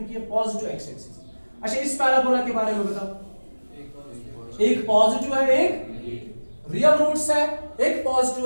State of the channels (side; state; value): both; inverted; correlation -1.00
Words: ये पॉजिटिव एक्स एक्सिस। अच्छा, इस पैराबोला के बारे में बताओ। एक पॉजिटिव है, एक रियल रूट्स है, एक